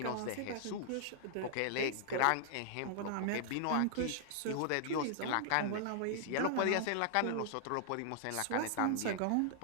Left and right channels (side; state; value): both; different; correlation -0.01